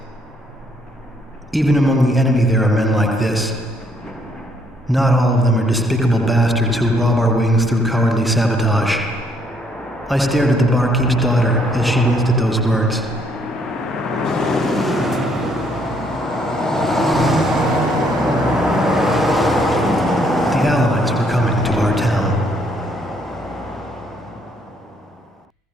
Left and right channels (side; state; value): both; normal; correlation 0.69